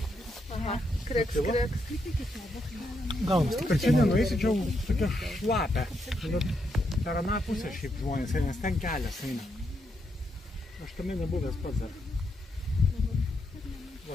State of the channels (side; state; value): both; normal; correlation 0.80